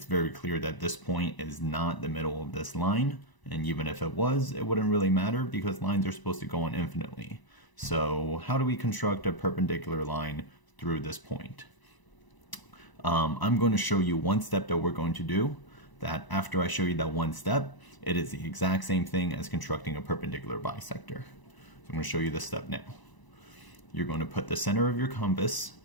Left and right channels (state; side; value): late; right; 1.0 ms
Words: very clear that this point is not the middle of this line, and even if it was, it wouldn't really matter because lines are supposed to go on infinitely. So how do we construct a perpendicular line through this point? I'm going to show you one step that we're going to do, that after I show you that one step, it is the exact same thing as constructing a perpendicular bisector. So I'm going to show you this step now. You're going to put the center of your compass